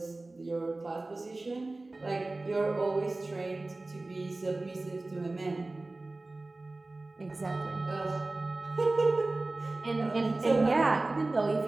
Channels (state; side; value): quieter; left; 3.1 dB